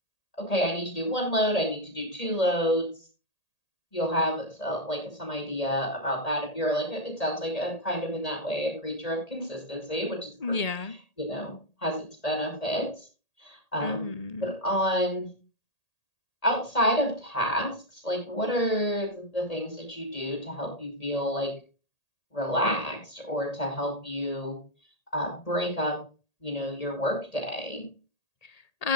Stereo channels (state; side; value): late; right; 1.8 ms